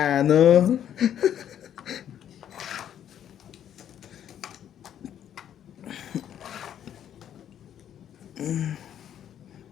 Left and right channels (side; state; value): right; quieter; 10.0 dB